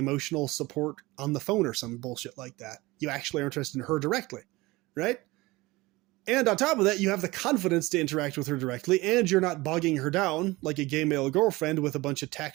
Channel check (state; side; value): quieter; left; 21.1 dB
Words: support on the phone or some bullshit like that. You actually are interested in her directly, right? And on top of that, you have the confidence to interact with her directly, and you're not bogging her down like a gay male girlfriend with a bunch of